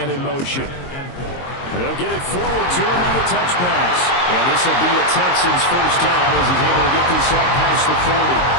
in motion. And they'll get it forward to him on the touch pass. And this will be a Texans first down as he's able to get this up past the 40.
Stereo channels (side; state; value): right; late; 22 ms